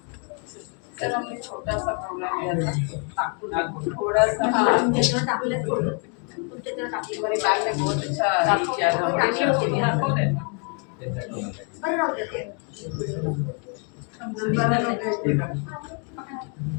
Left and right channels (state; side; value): quieter; right; 39.4 dB